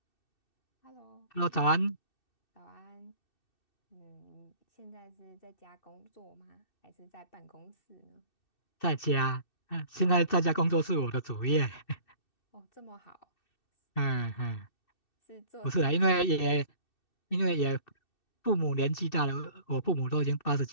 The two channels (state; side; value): late; right; 2.6 ms